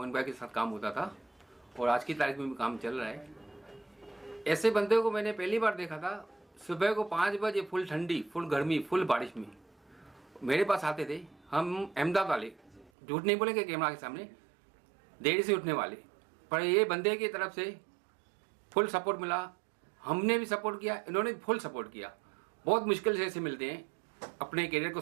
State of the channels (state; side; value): drops out; left; at 12.9 s